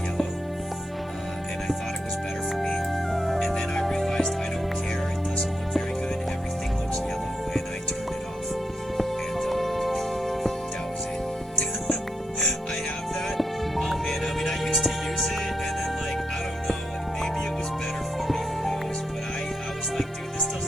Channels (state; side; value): normal; both; correlation 0.82